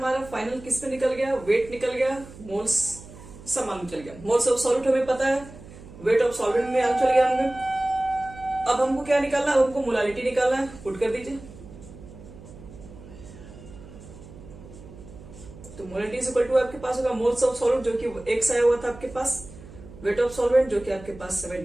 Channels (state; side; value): noise; right; hum, 17 dB below the sound